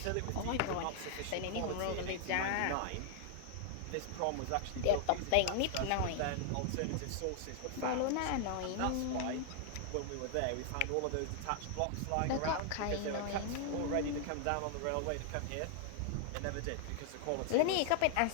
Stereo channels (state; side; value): different; both; correlation 0.00